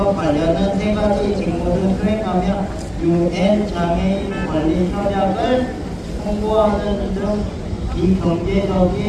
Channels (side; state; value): both; identical; correlation 1.00